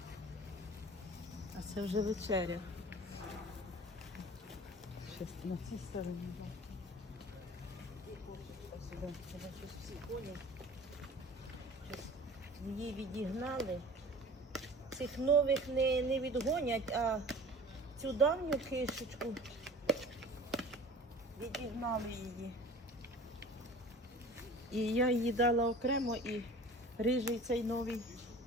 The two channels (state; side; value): normal; both; correlation 0.42